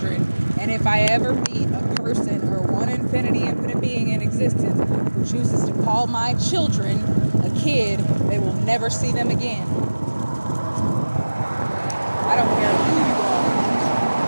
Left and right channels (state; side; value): inverted; both; correlation -1.00